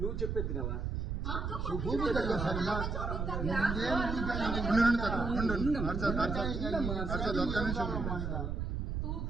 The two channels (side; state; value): right; noise; rumble, 2 dB below the sound